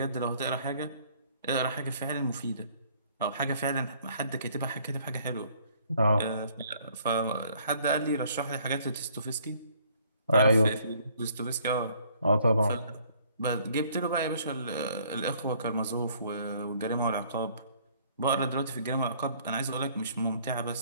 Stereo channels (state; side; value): inverted; both; correlation -0.61